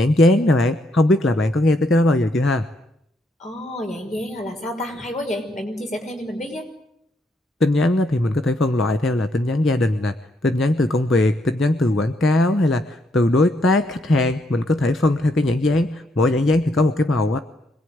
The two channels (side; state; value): both; normal; correlation 0.75